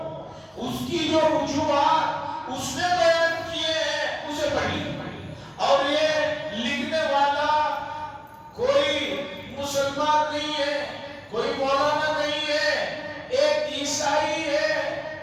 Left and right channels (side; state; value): both; identical; correlation 1.00